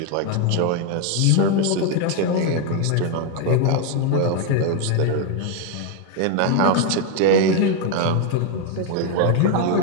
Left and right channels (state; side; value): different; both; correlation 0.01